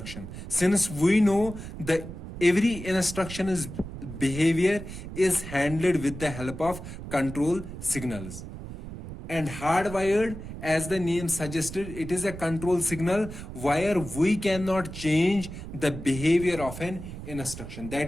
since we know that every instruction is behavior is handled with the help of control signals. And hardwired, as the name suggested, it is a control signal where we cannot change the behavior of an instruction.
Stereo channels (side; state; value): right; noise; rumble, 10 dB below the sound